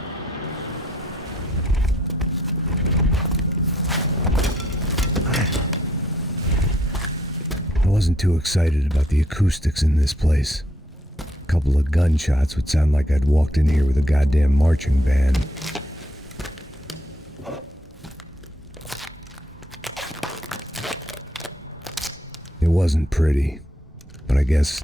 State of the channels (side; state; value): both; normal; correlation 0.69